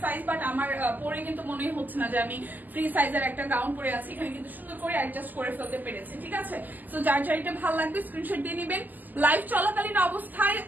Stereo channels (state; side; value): late; left; 0.084 ms